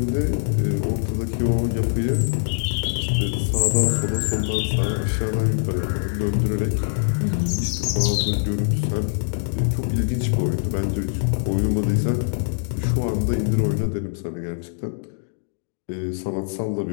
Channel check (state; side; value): silent; right; digital silence